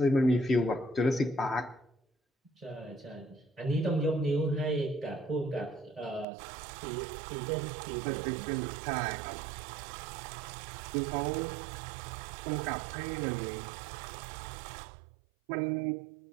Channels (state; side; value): drops out; left; at 6.2 s